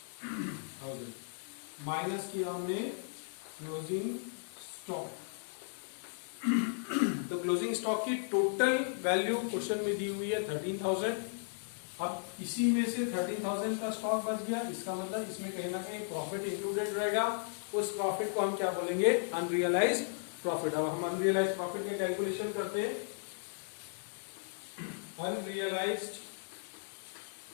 माइनस किया हमने क्लोजिंग स्टॉक। तो क्लोजिंग स्टॉक की टोटल वैल्यू क्वेश्चन में दी हुई है 13,000। अब इसी में से 13,000 का स्टॉक बच गया, इसका मतलब इसमें कहीं ना कहीं प्रॉफिट इंक्लूडेड रहेगा। उस प्रॉफिट को हम क्या बोलेंगे, अनरियलाइज्ड प्रॉफिट। अब हम अनरियलाइज्ड प्रॉफिट का कैलकुलेशन करते हैं। Unrealized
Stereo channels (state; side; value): silent; right; digital silence